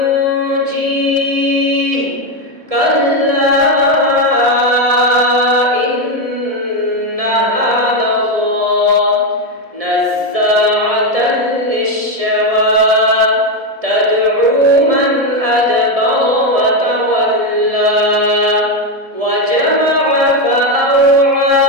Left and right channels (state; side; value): late; left; 1.7 ms